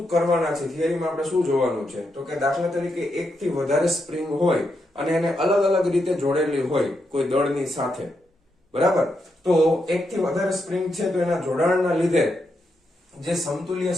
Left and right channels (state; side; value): normal; both; correlation 0.82